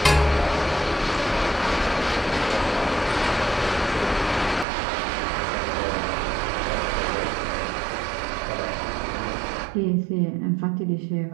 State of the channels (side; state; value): left; drops out; at 4.7 s